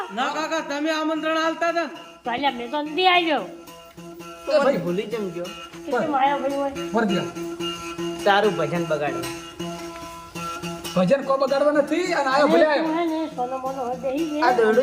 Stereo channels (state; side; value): identical; both; correlation 1.00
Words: ના કાકા તમે આમંત્રણ આલતા હતા ને? તો અલ્યા મેં તો નથી આવ્યો તો ભાઈ ભૂલી કેમ ગયો કેમ આવ્યો ભાઈ હોય मर गया। તારું ભજન બગાડ્યું भजन को बगाड़वा નથી અને આયો ભલે આયો। હે ને સોનો મોનો હોય બેહી આ ગયા